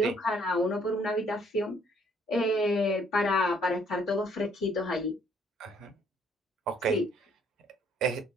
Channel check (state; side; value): normal; both; correlation 0.64